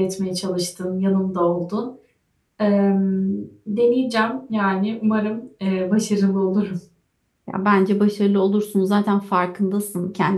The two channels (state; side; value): identical; both; correlation 1.00